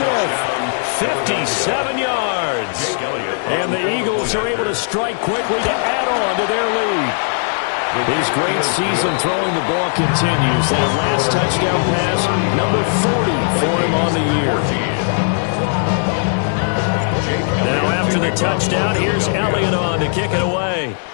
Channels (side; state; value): right; silent; digital silence